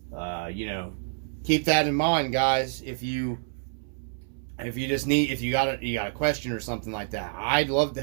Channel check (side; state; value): left; silent; 60 dB below the other